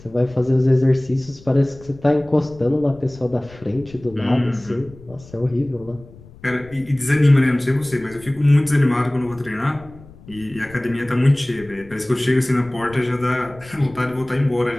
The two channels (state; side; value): noise; left; rumble, 21 dB below the sound